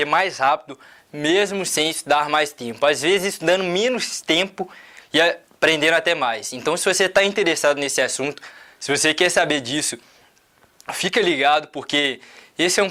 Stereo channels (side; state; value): both; identical; correlation 1.00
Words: mais rápido, mesmo sem estudar mais tempo. Às vezes estudando menos tempo e aprendendo até mais. Então se você está interessado nesse assunto, se você quer saber disso, fica ligado porque esse é um